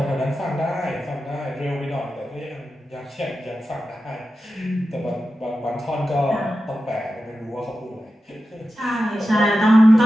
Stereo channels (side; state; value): both; normal; correlation 0.92